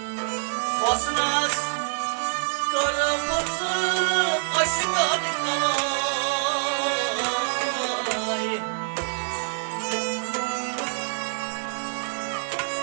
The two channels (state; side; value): silent; left; 56 dB below the other